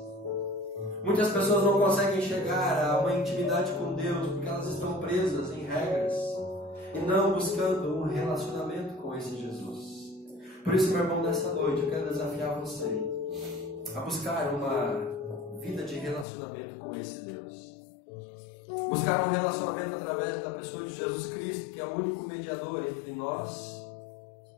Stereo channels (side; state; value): right; drops out; at 16.2 s